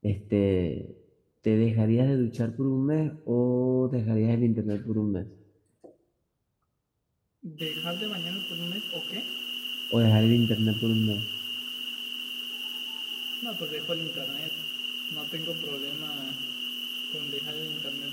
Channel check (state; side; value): identical; both; correlation 1.00